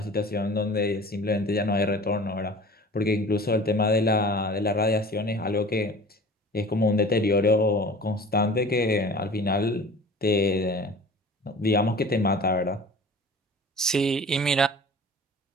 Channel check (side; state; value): both; normal; correlation 0.42